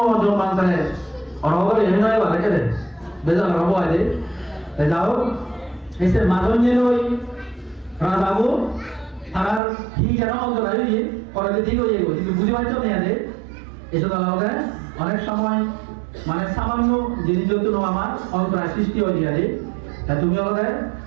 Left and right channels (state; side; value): drops out; left; at 9.6 s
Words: অরহলে এই নয় বা রেখে দে বেজাল রব আদে যাও এসে মাজন যে ওই রাজাবু তার কি যেন অন্তরায় হইয়ে পরে ঠিক হয়ে গেল কিন্তু বুঝে পারছো না আদে এসে তাহলে অনেক সময় মানে সামান্য জিনিস যত আমার অন্তরায় সৃষ্টি হয়ে যায় তা তুমি হলে